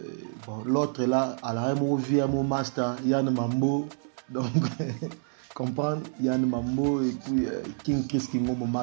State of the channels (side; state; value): left; silent; 59 dB below the other